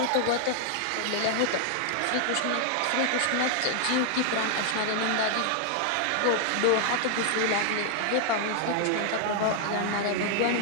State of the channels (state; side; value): different; both; correlation 0.00